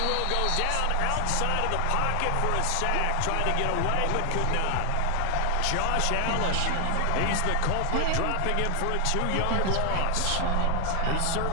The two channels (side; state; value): both; different; correlation 0.00